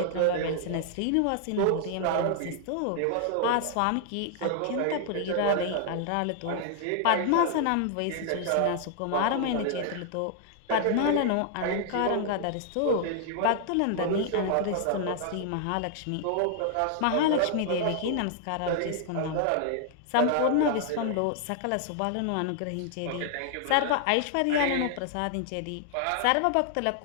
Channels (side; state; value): both; different; correlation 0.00